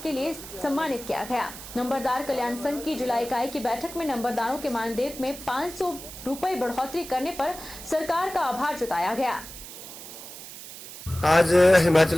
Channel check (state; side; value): noise; right; hiss, 13 dB below the sound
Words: के लिए सम्मानित किया गया। नंबरदार कल्याण संघ की जिला इकाई की बैठक में नंबरदारों के मानदेय में 500 रुपए बढ़ोतरी करने पर सरकार का आभार जताया गया। आज